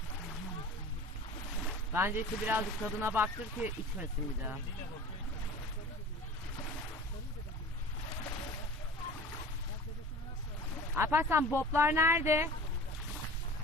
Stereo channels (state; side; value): normal; both; correlation 0.40